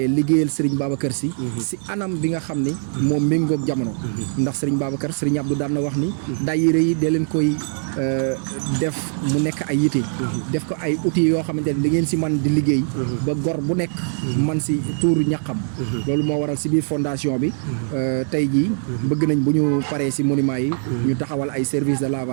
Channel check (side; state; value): left; silent; digital silence